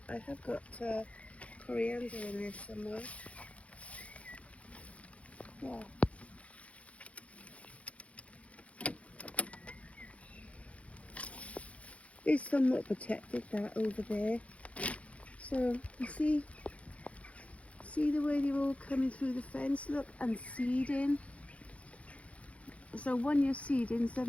I have got coriander in there somewhere. Yeah. It's somewhat protected, that over there. So you see the way they're all coming through the fence, look, and seeding. So 1 year seeding,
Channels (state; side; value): late; right; 0.064 ms